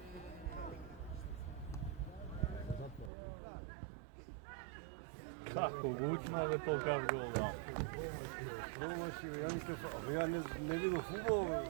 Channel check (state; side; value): drops out; left; at 3.1 s